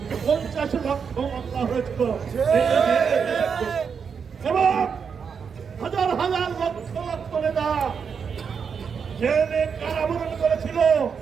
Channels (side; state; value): left; quieter; 6.4 dB